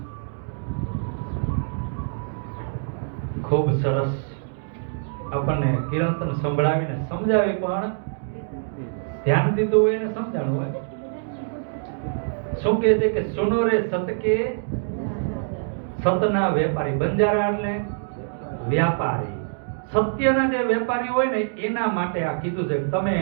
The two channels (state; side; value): silent; left; digital silence